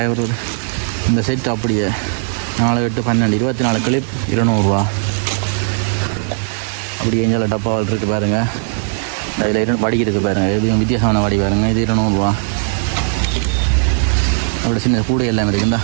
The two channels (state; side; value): silent; left; 68 dB below the other